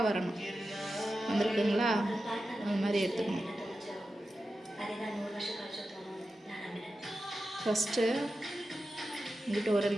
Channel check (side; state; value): both; normal; correlation 0.92